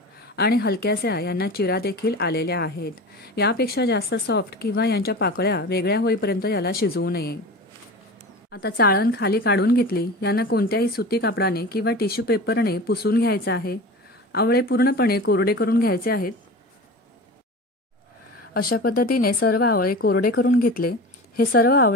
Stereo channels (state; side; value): normal; both; correlation 0.33